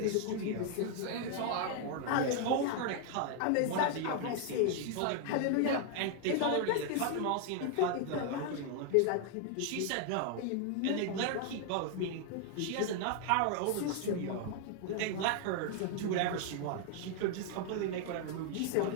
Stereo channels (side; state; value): both; different; correlation 0.00